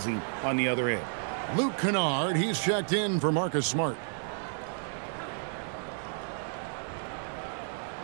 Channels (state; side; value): silent; left; 57 dB below the other